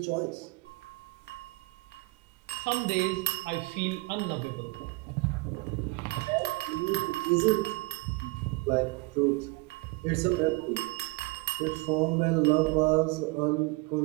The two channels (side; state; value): left; quieter; 24.9 dB